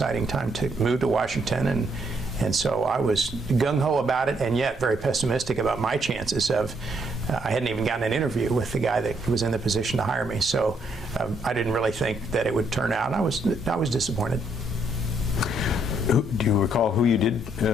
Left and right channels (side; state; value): both; normal; correlation 0.73